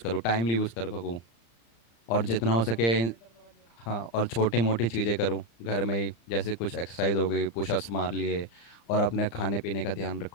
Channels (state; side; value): late; right; 35 ms